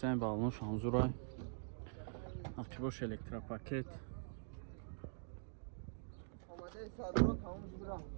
балонош ҳамзурай. ақибош электропакет.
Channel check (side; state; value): left; silent; digital silence